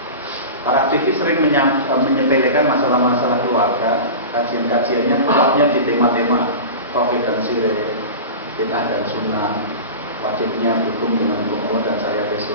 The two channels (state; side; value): inverted; both; correlation -0.30